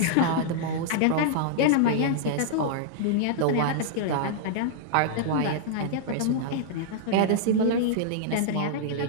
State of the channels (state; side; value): different; both; correlation -0.01